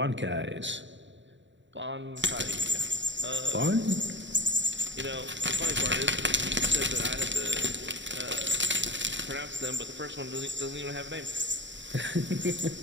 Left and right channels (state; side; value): late; left; 0.54 ms